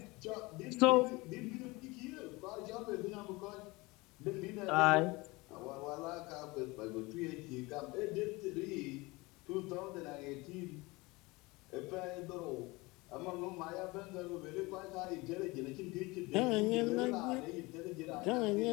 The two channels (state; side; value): quieter; right; 23.4 dB